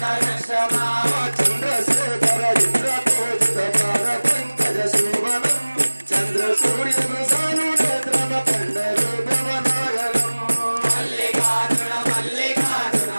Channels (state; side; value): inverted; both; correlation -1.00